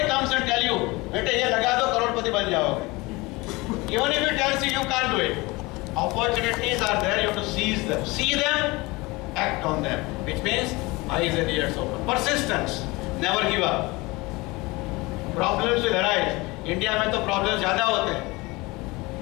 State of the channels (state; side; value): quieter; right; 23.2 dB